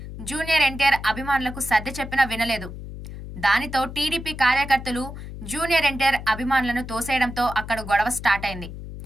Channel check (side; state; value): left; noise; hum, 11 dB below the sound